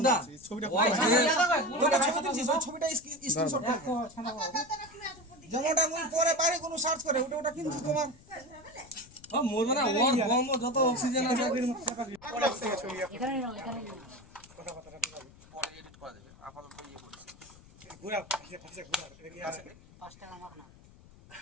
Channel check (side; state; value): left; noise; rumble, 23 dB below the sound